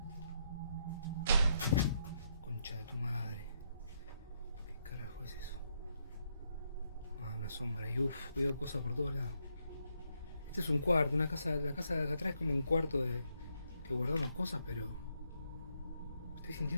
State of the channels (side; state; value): both; inverted; correlation -0.77